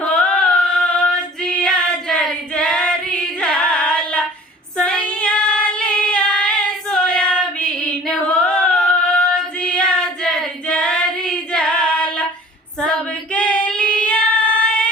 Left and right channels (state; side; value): normal; both; correlation 0.47